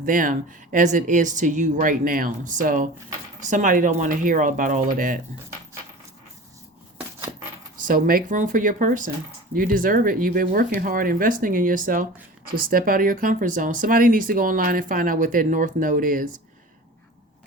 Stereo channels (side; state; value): both; normal; correlation 0.37